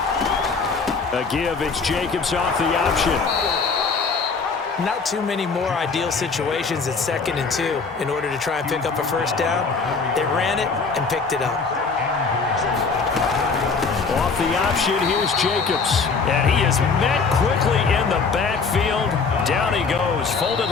A give, it's Jacobs off the option. Not too many more ideal situations at 2nd and 2 in order to try and pick up a first down. They ran it and picked it up. Off the option, here's Jacobs. And he is met quickly in the backfield. Down he goes, folded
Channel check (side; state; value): right; quieter; 4.7 dB